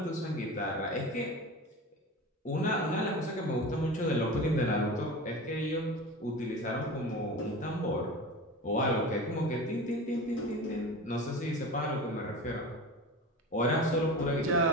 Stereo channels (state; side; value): normal; both; correlation 0.31